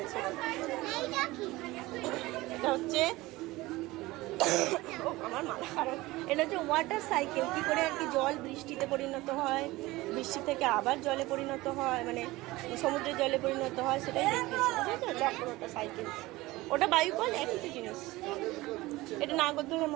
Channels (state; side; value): quieter; left; 19.7 dB